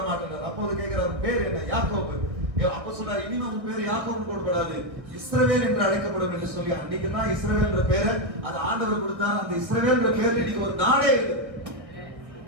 மாட்டேன். அப்போது கேட்கிறார், பேர் என்ன? யாக்கோபு. அப்ப சொன்னார், இனிமே உன் பேர் யாக்கோபு போடப்படாது, இஸ்ரவேல் என்று அழைக்கப்படும் என்று சொல்லி அன்னைக்கு தான் இஸ்ரவேல் என்ற பேரை அது ஆண்டவர் கொடுத்தார். அந்த இஸ்ரவேல் என்ற பேர்ல இன்னைக்கு ஒரு நாடே இருக்கு.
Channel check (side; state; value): left; late; 1.5 ms